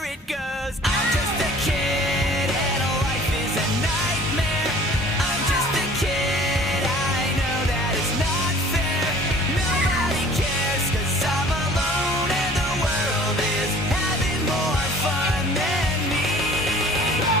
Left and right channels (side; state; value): both; normal; correlation 0.49